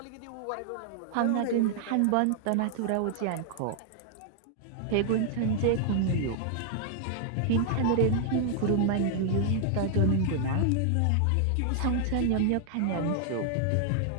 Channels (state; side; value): different; both; correlation 0.00